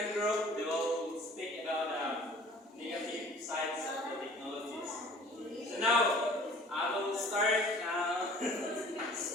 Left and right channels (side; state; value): both; normal; correlation 0.49